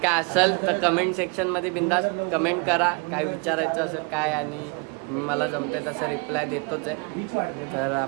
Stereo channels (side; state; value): left; quieter; 32.5 dB